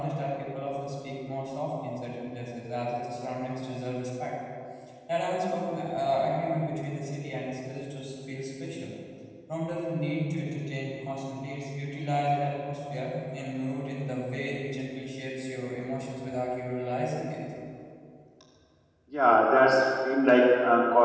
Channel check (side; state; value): both; identical; correlation 1.00